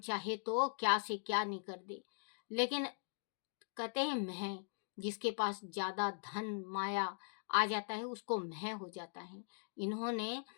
तो क्या से क्या नहीं कर दे। लेकिन कहते हैं मैं, जिसके पास ज्यादा धन माया आ जाता है उसको मैं हो जाता है। इन्होंने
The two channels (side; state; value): right; silent; digital silence